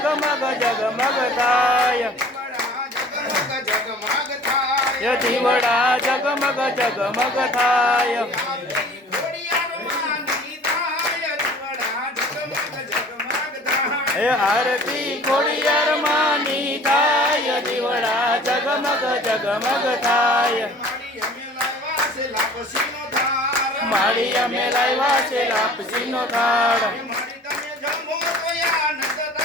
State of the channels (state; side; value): normal; both; correlation 0.47